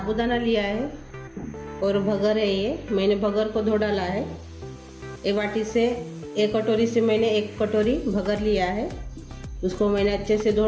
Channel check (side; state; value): both; identical; correlation 1.00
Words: लिया है और भगर है। ये मैंने भगर को धो डाला है। एक बाटी से एक कटोरी से मैंने एक कटोरी भगर लिया है। उसको मैंने अच्छे से